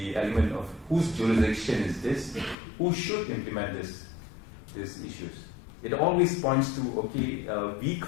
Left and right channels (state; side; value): drops out; right; at 2.6 s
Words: element of whose jurisdiction is this, who should implement these issues. It always points to, okay, we